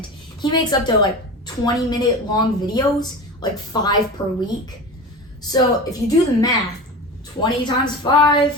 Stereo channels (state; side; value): normal; both; correlation 0.30